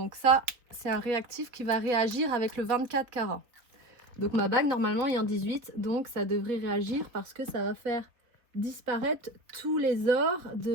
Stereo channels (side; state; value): left; late; 3.7 ms